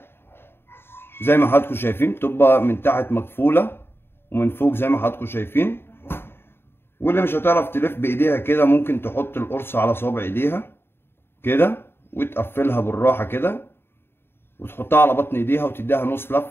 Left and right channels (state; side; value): late; right; 0.11 ms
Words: زي ما حضراتكم شايفين، بتبقى من تحت مقفوله ومن فوق زي ما حضراتكم شايفين. واللي مش هتعرف تلف بايديها كده ممكن تحط القرصه على صوابع ايديها كده وتقفلها بالراحه كده وتحطها على بطن ايديها وتديها نص